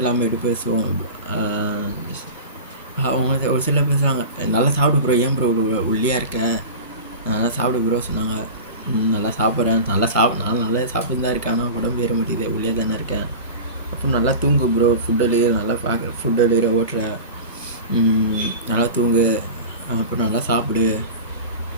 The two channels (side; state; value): both; inverted; correlation -0.31